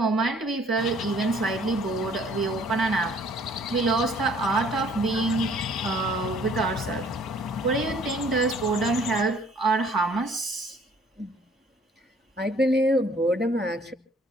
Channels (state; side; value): normal; both; correlation 0.57